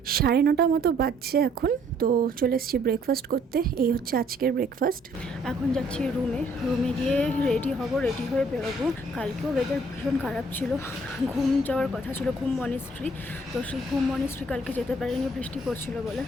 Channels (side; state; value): both; normal; correlation 0.63